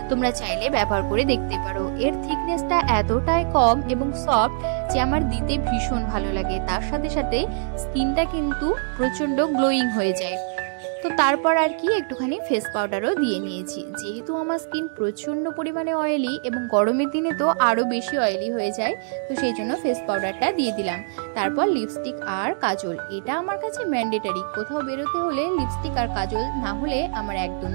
তোমরা চাইলে ব্যবহার করে দেখতে পারো। এর থিকনেসটা এতটাই কম এবং সফট যে আমার দিতে ভীষণ ভালো লাগে। তার সাথে সাথে স্কিনটা কিন্তু প্রচন্ড গ্লোয়িং হয়ে যায়। তো তারপর আর কি একটুখানি ফেস পাউডারও দিয়ে নিয়েছি, যেহেতু আমার স্কিন প্রচন্ড পরিমাণে অয়েলি এবং গরমের দিনে তো আরো বেশি অয়েলি হয়ে যায়, তো সেই জন্য ফেস পাউডারটা দিয়ে দিলাম। তারপর লিপস্টিক আর কাজল, এটা আমার কাছে ম্যান্ডেটারি। কোথাও বেরোতে হলে লিপস্টিক আর কাজল না হলে আমার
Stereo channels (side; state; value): left; silent; digital silence